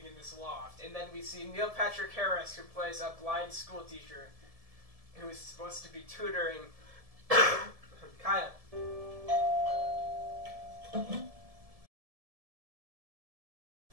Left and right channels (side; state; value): left; late; 1.7 ms